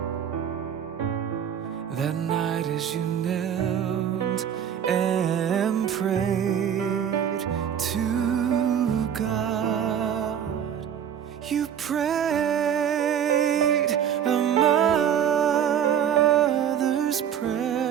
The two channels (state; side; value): quieter; left; 8.9 dB